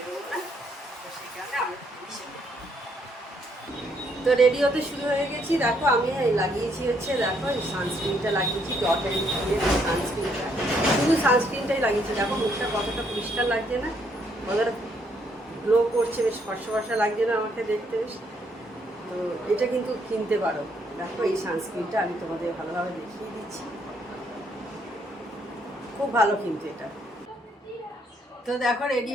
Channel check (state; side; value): normal; both; correlation 0.71